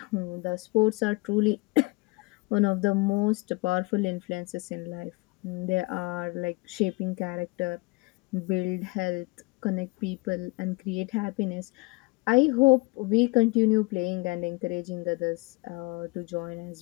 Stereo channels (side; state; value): right; quieter; 25.5 dB